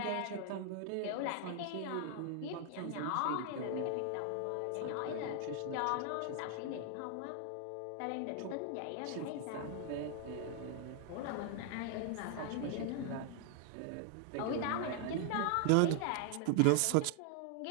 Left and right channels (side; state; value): both; different; correlation 0.00